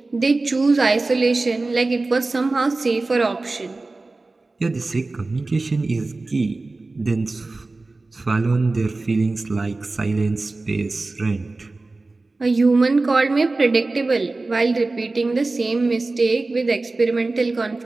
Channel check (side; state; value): left; quieter; 3.3 dB